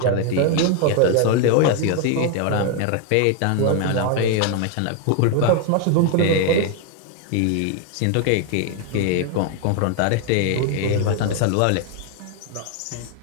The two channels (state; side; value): different; both; correlation 0.00